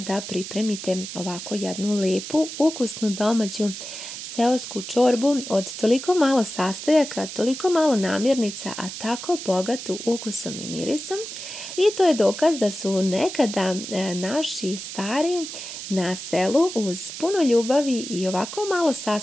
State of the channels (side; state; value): right; noise; hiss, 9 dB below the sound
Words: pripremite ovako jednu lepu, ukusnu domaću seosku čorbu od toliko malo sastojaka, toliko malo namirnica, a tako bogatu ukusom i mirisom. I to je dokaz da su nekada naši stari na selu uz puno ljubavi i ovako malo